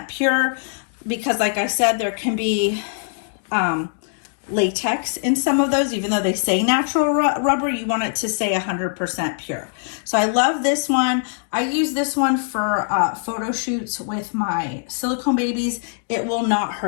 pure because, like I said, there can be latex in some of those. Even though they say natural rubber, you want it to say 100% pure. So I love this one. I use this one for photo shoots with my silicone babies. It will not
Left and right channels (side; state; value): right; silent; digital silence